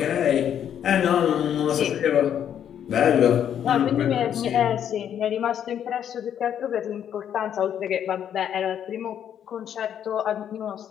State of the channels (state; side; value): quieter; right; 9.4 dB